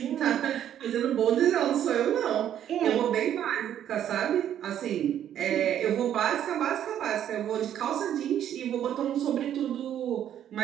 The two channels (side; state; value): left; quieter; 10.4 dB